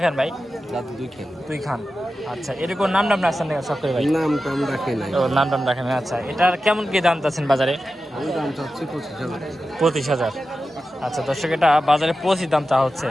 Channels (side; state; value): both; normal; correlation 0.92